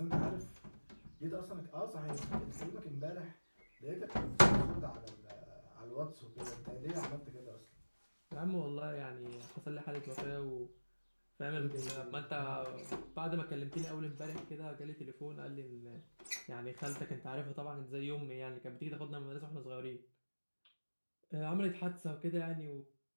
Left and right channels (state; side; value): inverted; both; correlation -1.00